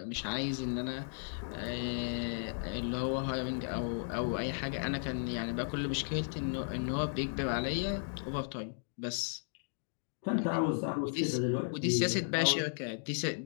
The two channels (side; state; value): right; silent; digital silence